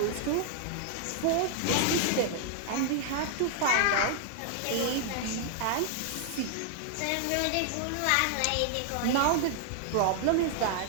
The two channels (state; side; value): different; both; correlation 0.00